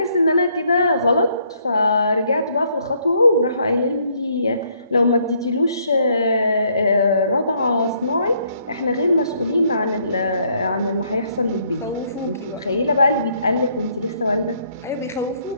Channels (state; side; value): inverted; both; correlation -0.69